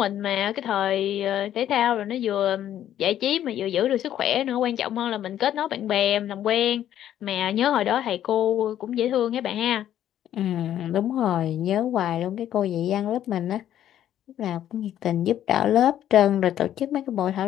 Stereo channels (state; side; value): quieter; right; 11.3 dB